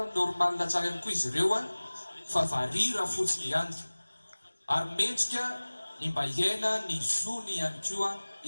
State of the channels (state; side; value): inverted; both; correlation -1.00